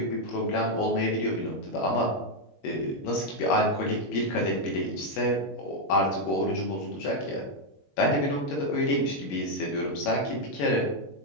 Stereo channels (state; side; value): late; right; 21 ms